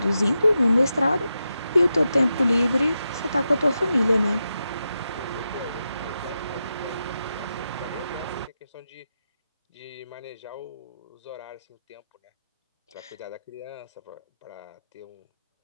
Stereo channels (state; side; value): inverted; both; correlation -0.89